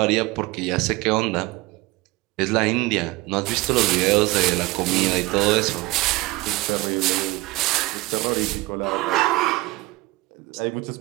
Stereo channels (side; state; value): left; quieter; 21.1 dB